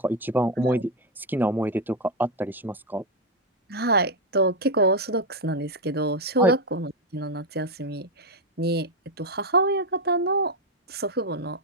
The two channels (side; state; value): both; normal; correlation 0.06